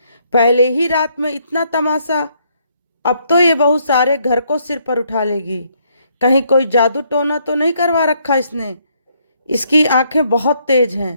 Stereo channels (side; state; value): both; inverted; correlation -0.71